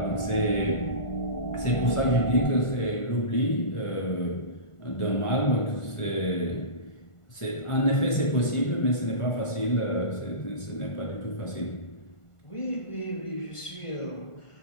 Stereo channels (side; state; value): right; late; 1.5 ms